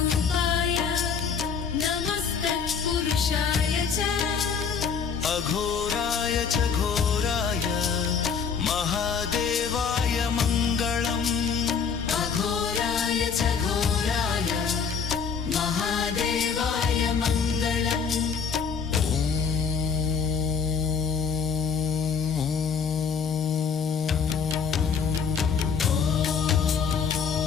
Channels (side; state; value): right; quieter; 6.3 dB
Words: नमस्तत्पुरुषाय च अघोराय च घोराय महादेवाय मङ्गलम् अघोराय च घोराय महादेवाय मङ्गलम्